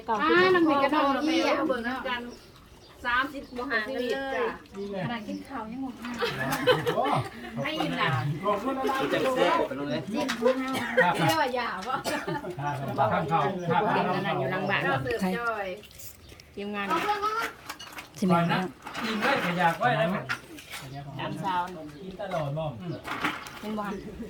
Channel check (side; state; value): both; identical; correlation 1.00